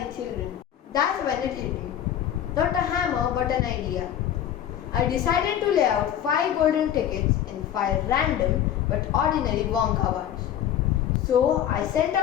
children. That's when it hit me. Not a hammer, but an idea. I decided to lay out 5 golden tickets in 5 random but ordinary Wonka bars. So I sent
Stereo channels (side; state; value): right; quieter; 10.5 dB